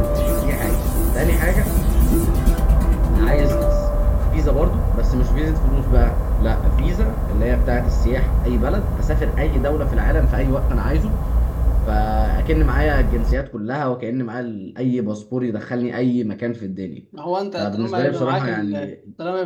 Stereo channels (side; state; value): both; identical; correlation 1.00